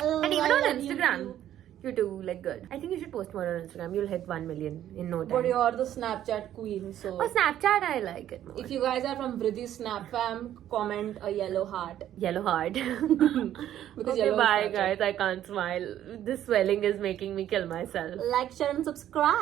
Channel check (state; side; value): quieter; left; 11.6 dB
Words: even on Instagram, you do like good. I think you should post more on Instagram. You'll hit 1 million in no time. But you're the Snapchat queen, so. Oh, Snapchat, I like it more. If you guys are from VRIDDHI Snap fam, comment a yellow heart. Yellow heart. Because okay, yellow bye is guys. I can't smile. This swelling is making me kill myself. Like, share and